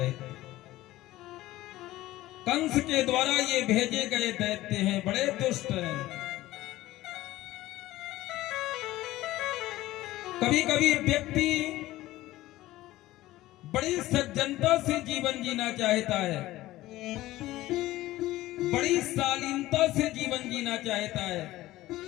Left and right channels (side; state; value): right; quieter; 16.6 dB